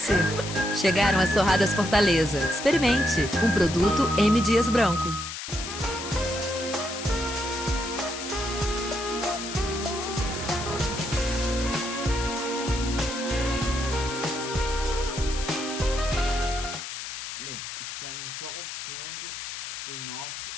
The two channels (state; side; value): noise; left; hiss, 7 dB below the sound